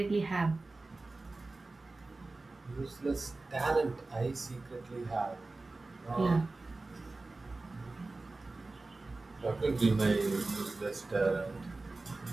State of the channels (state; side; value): quieter; left; 3.3 dB